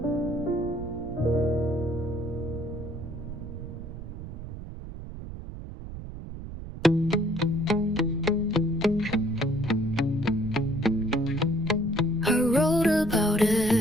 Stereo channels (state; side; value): noise; right; rumble, 10 dB below the sound